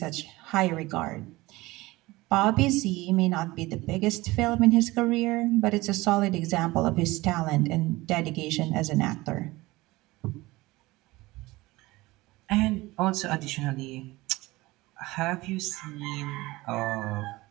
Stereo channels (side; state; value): left; quieter; 20.2 dB